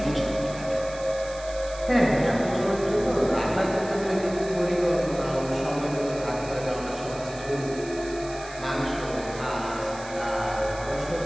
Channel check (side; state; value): right; noise; hiss, 16 dB below the sound